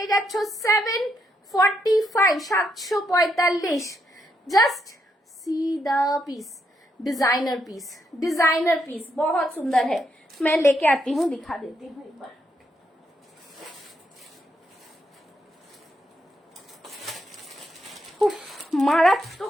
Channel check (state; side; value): normal; both; correlation 0.79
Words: যাচ্ছ 745, 745। Just see the piece, designer piece, designer piece बहुत सुंदर है। मैं लेके आती हूँ, दिखा देती हूँ एक बार।